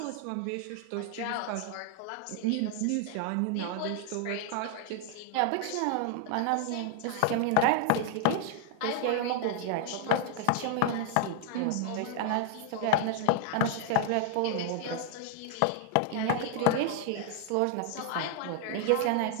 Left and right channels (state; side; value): different; both; correlation 0.00